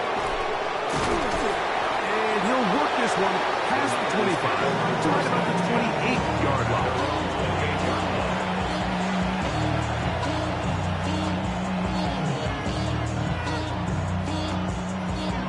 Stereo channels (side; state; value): both; identical; correlation 1.00